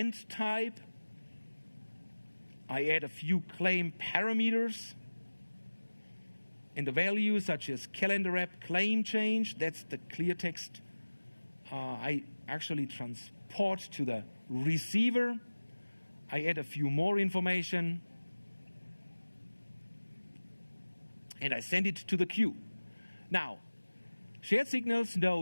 type. I add a few claim parameters and the values such as calendar app claim change. That's the clear text I actually transport to the receiver. I add a few more information and I send it to the queue. Now, Shared Signals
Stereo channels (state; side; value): inverted; both; correlation -1.00